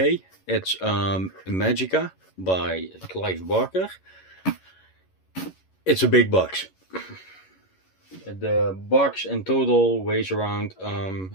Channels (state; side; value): late; right; 11 ms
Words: it's Imajica by Clive Barker. It's a big box. The box in total weighs around